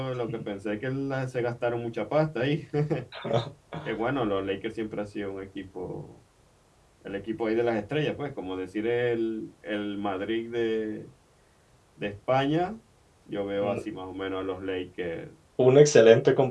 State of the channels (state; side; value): identical; both; correlation 1.00